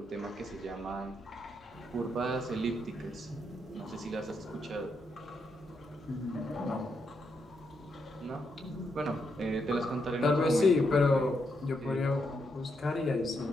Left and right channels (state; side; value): normal; both; correlation 0.80